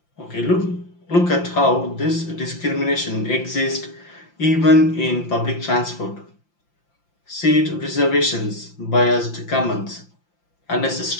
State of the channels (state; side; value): late; right; 5.8 ms